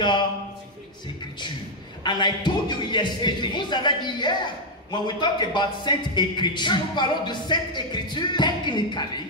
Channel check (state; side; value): normal; both; correlation 0.01